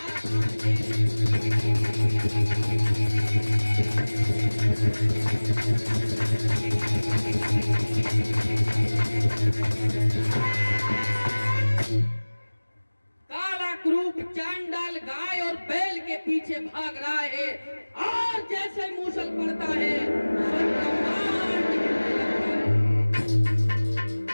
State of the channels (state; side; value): inverted; both; correlation -1.00